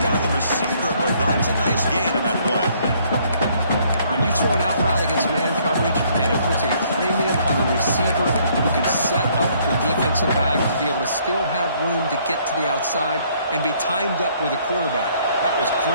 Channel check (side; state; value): both; inverted; correlation -0.64